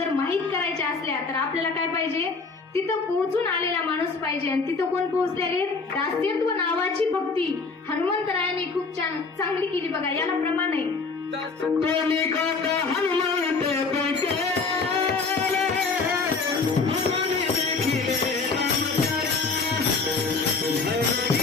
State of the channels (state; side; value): quieter; right; 4.3 dB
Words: माहीत करायच्या असल्या तर आपल्याला काय पाहिजे? तिथं पोहोचून आलेला माणूस पाहिजे. आणि तिथं कोण पोहोचलेले? दास्यत्व नावाची भक्ती हनुमंतरायांनी खूप चांगली केली. बघा, याला प्रमाण आहे.